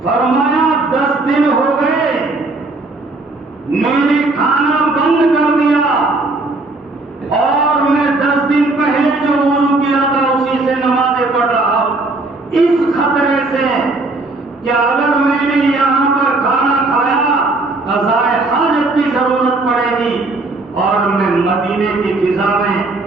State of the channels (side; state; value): left; quieter; 3.2 dB